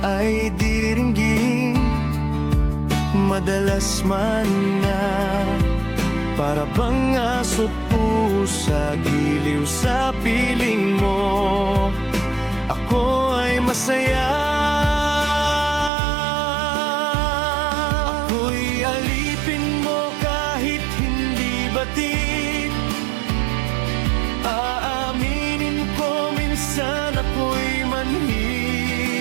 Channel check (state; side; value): drops out; left; at 15.9 s